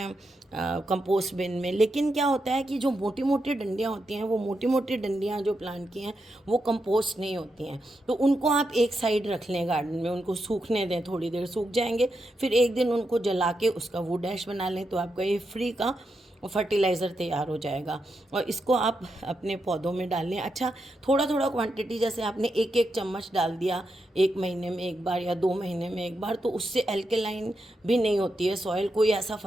कंपोस्ट बिन में, लेकिन क्या होता है कि जो मोटी मोटी डंडियाँ होती हैं, वो मोटी मोटी डंडियाँ जो प्लांट की हैं वो कंपोस्ट नहीं होती हैं। तो उनको आप एक साइड रख लें गार्डन में, उनको सूखने दें, थोड़ी देर सूख जाएंगे, फिर एक दिन उनको जला के उसका वुड ऐश बना लें, तो आपका ये फ्री का फर्टिलाइज़र तैयार हो जाएगा। और इसको आप अपने पौधों में डाल लें। अच्छा, थोड़ा थोड़ा क्वांटिटी, जैसे आपने एक एक चम्मच डाल दिया 1 महीने में एक बार या 2 महीने में एक बार, तो उससे एल्केलाइन भी नहीं होती है सॉइल, कोई ऐसा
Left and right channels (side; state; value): both; normal; correlation 0.85